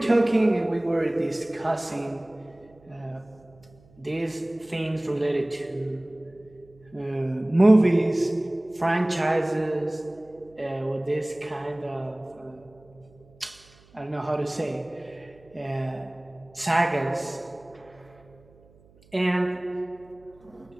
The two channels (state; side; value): noise; right; hum, 28 dB below the sound